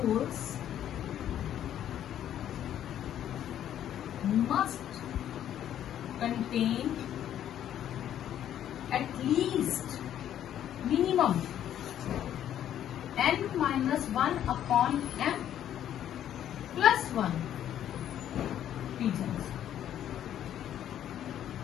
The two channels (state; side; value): quieter; right; 10.8 dB